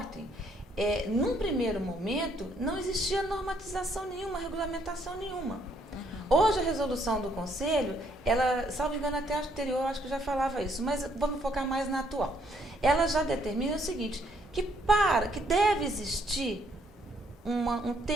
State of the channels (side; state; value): both; normal; correlation 0.69